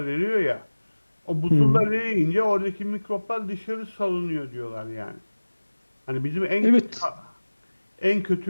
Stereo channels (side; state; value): both; inverted; correlation -1.00